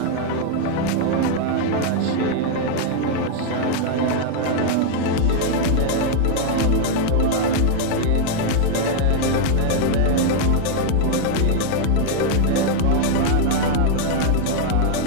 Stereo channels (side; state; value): both; different; correlation 0.00